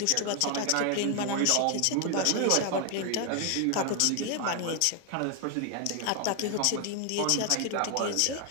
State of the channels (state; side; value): different; both; correlation 0.01